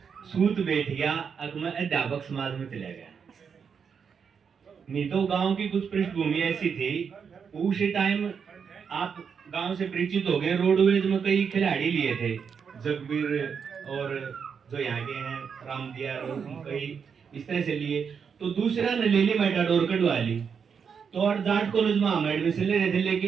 सूत बैठ गया, अब मैं अध्यापक समाज में चला गया। नहीं तो गांव की कुछ पृष्ठभूमि ऐसी थी, उसी टाइम आप गांव से परिचित हो गए, रोडवेज में कई खिलाड़ी लिए थे, जगबीर और जो यहाँ के हैं राम दिया और कई इस तरह से लिए। तो दूसरा ने ले ली मेटाडोर कटवा ली। तो और जाट कॉलेज में हम एडमिशन ले रहे थे,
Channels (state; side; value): quieter; left; 6.6 dB